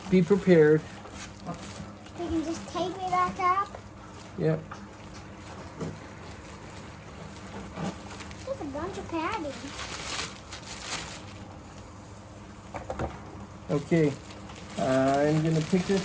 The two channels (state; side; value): identical; both; correlation 1.00